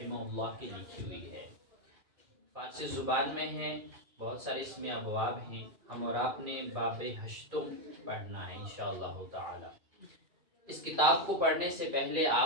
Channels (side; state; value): left; late; 2.5 ms